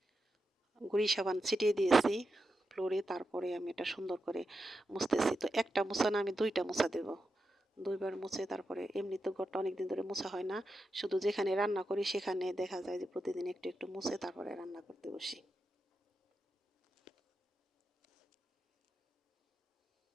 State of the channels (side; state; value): both; normal; correlation 0.88